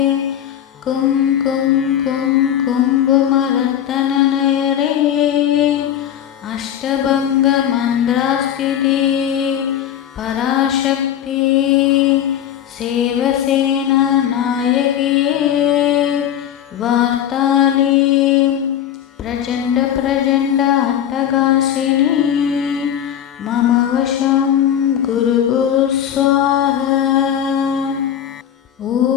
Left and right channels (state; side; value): quieter; right; 10.2 dB